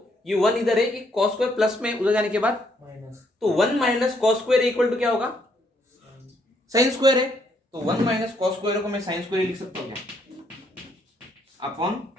ये 1 इधर है, कि कॉस स्क्वायर प्लस में उधर जाने के बाद माइनस, तो 1 minus cos square equal to क्या होगा, साइन स्क्वायर है, तो 1 माइनस कॉस स्क्वायर को मैं साइन स्क्वायर लिख सकता हूँ क्या, अपॉन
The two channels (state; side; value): normal; both; correlation 0.71